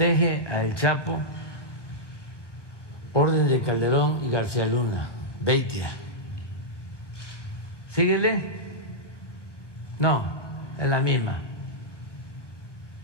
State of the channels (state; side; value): late; right; 1.1 ms